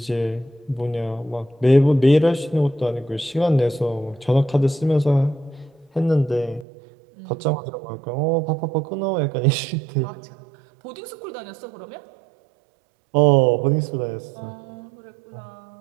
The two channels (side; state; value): left; drops out; at 6.7 s